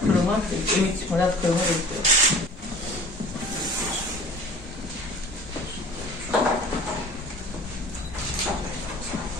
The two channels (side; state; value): both; normal; correlation 0.45